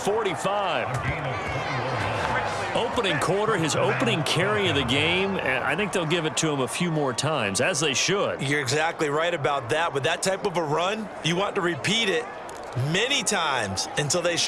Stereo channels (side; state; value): both; identical; correlation 1.00